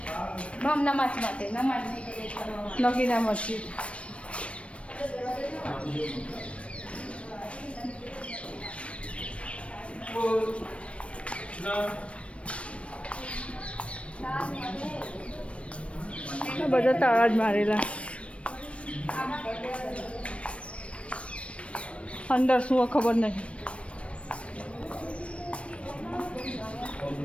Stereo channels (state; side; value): late; right; 0.061 ms